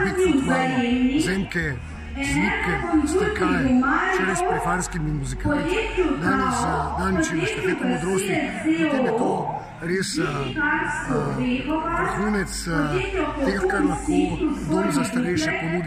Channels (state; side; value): identical; both; correlation 1.00